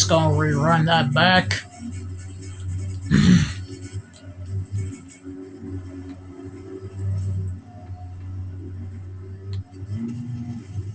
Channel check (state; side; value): identical; both; correlation 1.00